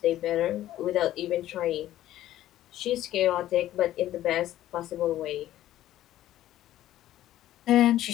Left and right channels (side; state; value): right; quieter; 13.5 dB